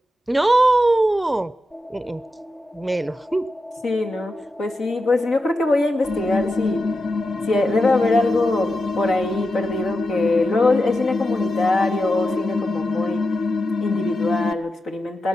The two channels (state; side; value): normal; both; correlation 0.89